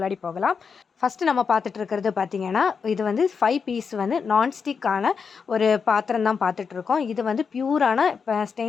போகலாம். ஃபஸ்ட்டு நம்ம பார்த்துட்டு இருக்கிறது பார்த்தீங்கன்னா, இது வந்து 5 பீஸ் வந்து நான்ஸ்டிக்கான ஒரு பாத்திரம் தான் பார்த்துட்ருக்கோம். இது வந்து பியூரான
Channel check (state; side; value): quieter; right; 5.8 dB